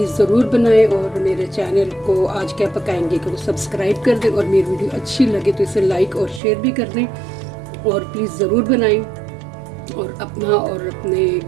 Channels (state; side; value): drops out; left; at 6.4 s